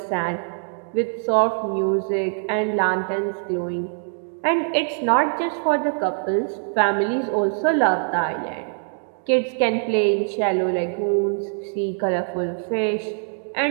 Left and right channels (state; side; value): silent; left; digital silence